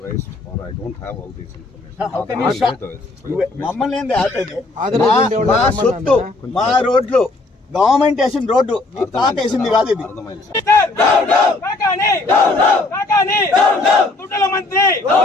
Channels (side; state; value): right; quieter; 3.2 dB